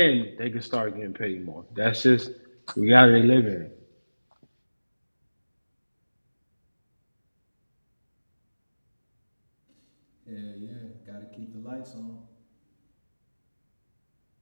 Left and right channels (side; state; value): both; inverted; correlation -1.00